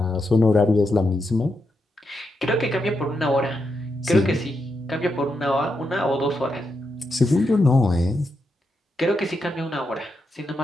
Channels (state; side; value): normal; both; correlation 0.84